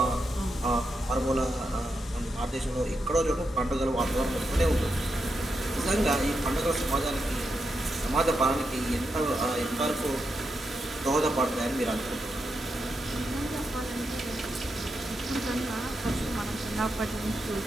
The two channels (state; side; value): normal; both; correlation 0.85